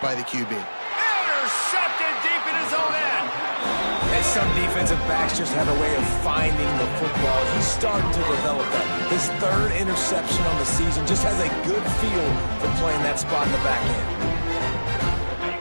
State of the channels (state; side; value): inverted; both; correlation -1.00